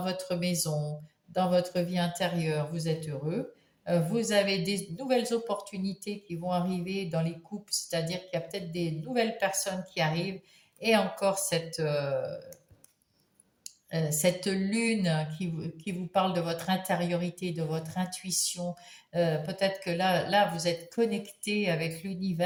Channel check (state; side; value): identical; both; correlation 1.00